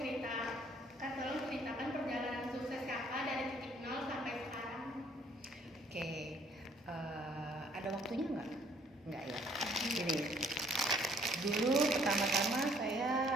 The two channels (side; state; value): both; normal; correlation 0.62